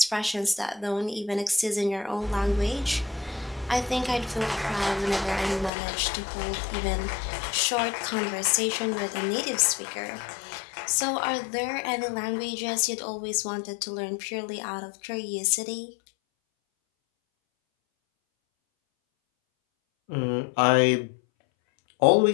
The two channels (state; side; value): drops out; right; at 5.7 s